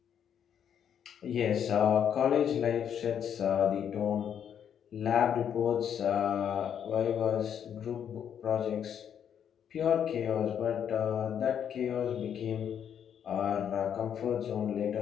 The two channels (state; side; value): quieter; right; 8.7 dB